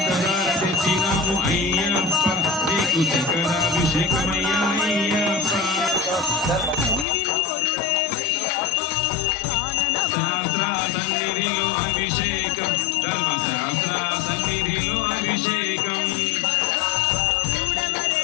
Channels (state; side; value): drops out; right; at 7.1 s